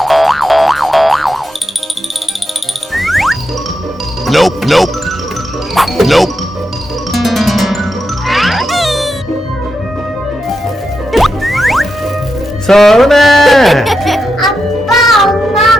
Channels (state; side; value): normal; both; correlation 0.86